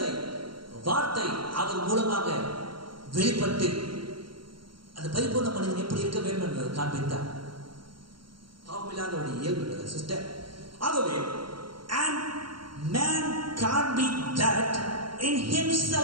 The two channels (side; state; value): left; late; 0.73 ms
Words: வார்த்தை அவர் மூலமாக வெளிப்பட்டு அந்த பரிபூர்ண மனிதன் எப்படி இருக்க வேண்டும் என்பதை காண்பித்தார். பாவமில்லாதவருடைய இயல்பு சிஸ்டர். ஆகவே and man can't be that in